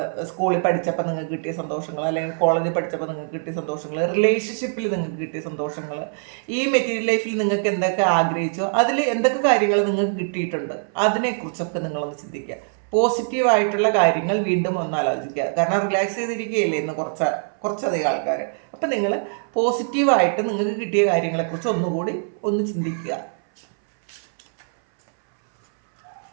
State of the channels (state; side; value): silent; left; 62 dB below the other